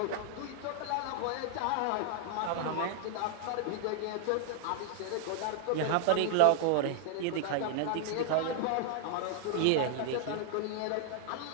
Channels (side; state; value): both; different; correlation 0.00